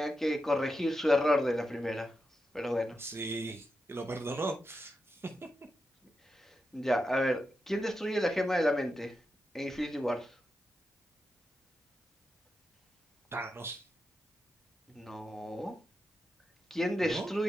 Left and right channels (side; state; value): both; normal; correlation 0.88